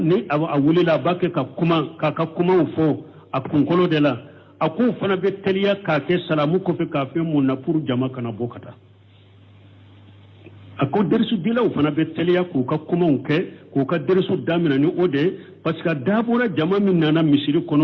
awulila ba ke ka kuma fo a kunkolo de la a ko fana be teliya ka ke salamu ko fe ka fe mun na pour jama kana bokata a ko dersu dila o fana be teliya ko ka kuma ke ko ka dersu damina ni ode parce que dabora jama min nana misiri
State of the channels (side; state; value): both; identical; correlation 1.00